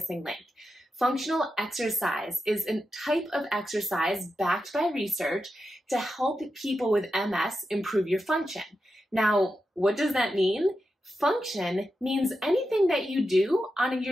Link. Functional exercise is a type of exercise backed by research to help people with MS improve your function. Now, what does that mean? Function means anything that you do on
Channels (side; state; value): both; normal; correlation 0.89